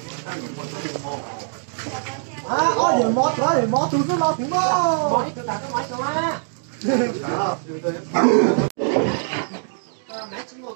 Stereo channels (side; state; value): left; silent; digital silence